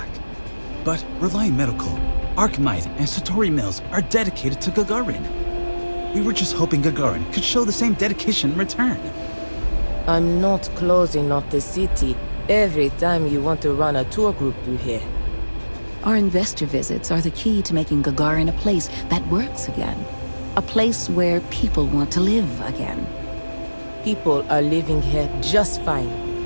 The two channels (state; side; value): inverted; both; correlation -1.00